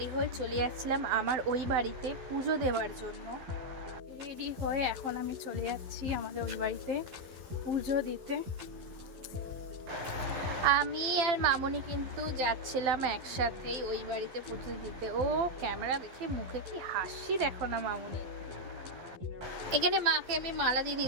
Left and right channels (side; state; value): left; late; 12 ms